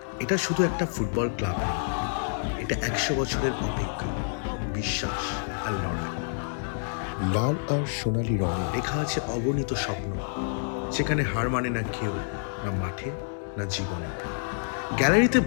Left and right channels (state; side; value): silent; right; digital silence